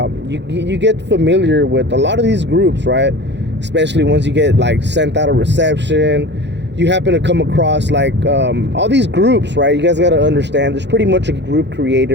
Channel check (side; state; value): left; late; 0.51 ms